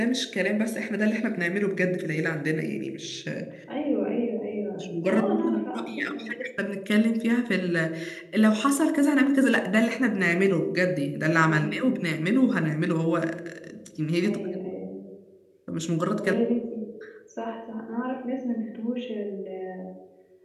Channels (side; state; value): both; identical; correlation 1.00